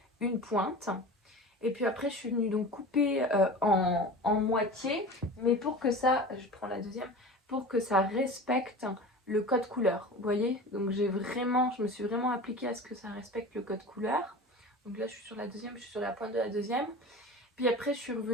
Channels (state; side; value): normal; both; correlation 0.35